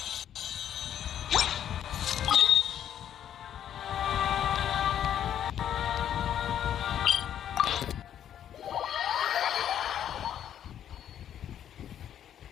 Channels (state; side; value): quieter; right; 10.0 dB